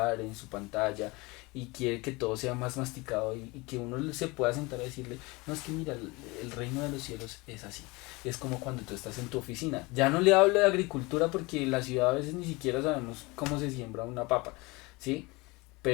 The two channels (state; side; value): quieter; right; 24.5 dB